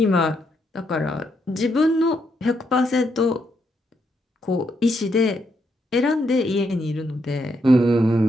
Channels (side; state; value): both; normal; correlation 0.78